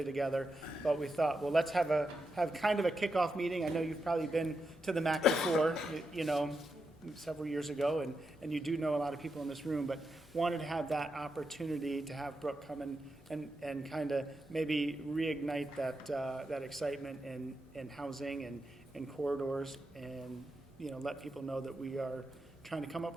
together, but we thought, well, let's have kind of a kickoff meeting. I know you've probably been to the MACC before, several years ago, and you do know a lot of people in this room, but wanted to have that opportunity to have Brooke come and kind of maybe reignite that excitement in housing and corridors, and let people know that we are trying to come up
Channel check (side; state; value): both; normal; correlation 0.86